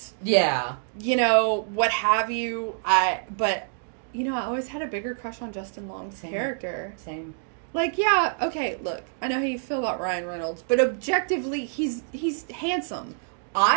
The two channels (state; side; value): silent; left; 61 dB below the other